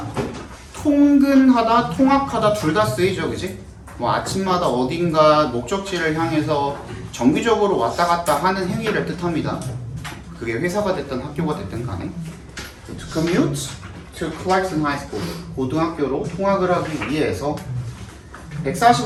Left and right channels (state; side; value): identical; both; correlation 1.00